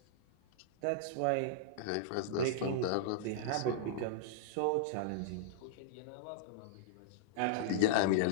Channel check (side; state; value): both; different; correlation -0.02